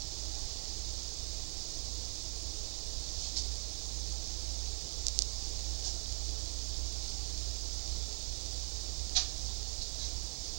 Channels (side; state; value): left; silent; digital silence